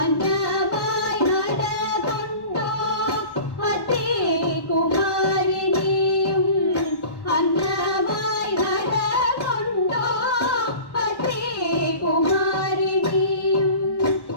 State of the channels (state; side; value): late; right; 1.1 ms